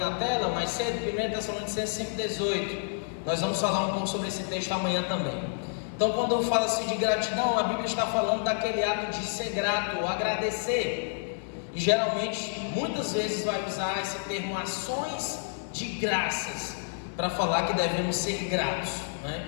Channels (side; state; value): right; silent; digital silence